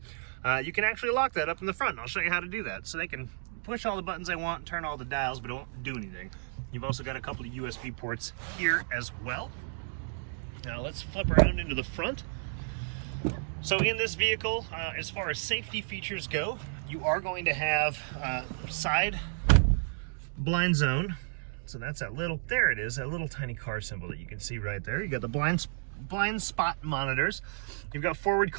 you can actually lock that up in the front. I'll show you how to do that. So they can push all the buttons they want, turn all the dials, but it won't do anything. You've also got a couple of USB ports here as well. Now let's flip around into the front. So in this vehicle, as far as safety features go, you are going to have side blind zone. So that's that little, there it is, that little tiny car symbol that you can see right there. You got the blind spot monitors. You've got forward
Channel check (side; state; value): left; silent; digital silence